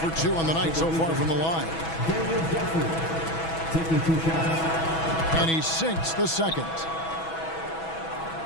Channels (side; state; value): right; late; 6.1 ms